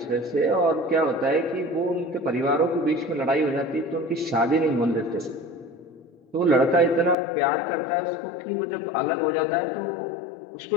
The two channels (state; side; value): drops out; right; at 7.2 s